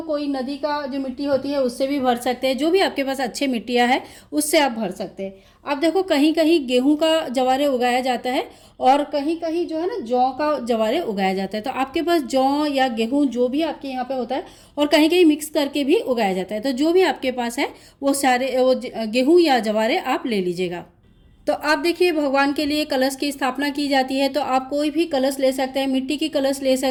कोई नदी का जो मिट्टी होती है उससे भी भर सकते हैं, जो भी आपके पास अच्छे मिट्टियाँ है उससे आप भर सकते हैं। अब देखो, कहीं कहीं गेहूँ का जवारे उगाया जाता है और कहीं कहीं जो है ना जौ का जवारे उगाया जाता है। तो आपके पास जौ या गेहूँ जो भी आपके यहाँ पे होता है, और कहीं कहीं मिक्स करके भी उगाया जाता है। तो जो भी आपके पास है वो सारे वो गेहूँ या जवारे आप ले लीजिएगा। तो आप देखिए, भगवान के लिए कलश की स्थापना की जाती है। तो आप कोई भी कलश ले सकते हैं, मिट्टी की कलश ले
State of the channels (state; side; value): identical; both; correlation 1.00